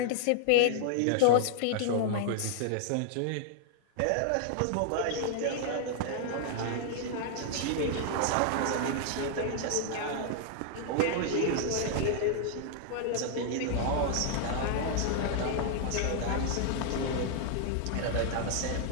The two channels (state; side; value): different; both; correlation -0.01